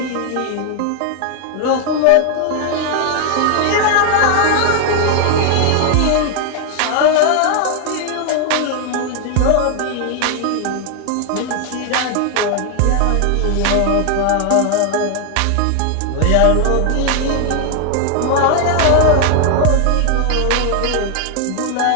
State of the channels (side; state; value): both; different; correlation 0.00